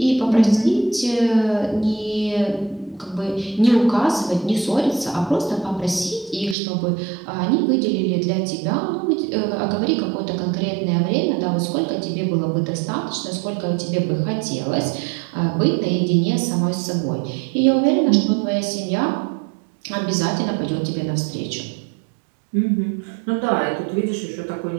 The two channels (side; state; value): left; drops out; at 6.6 s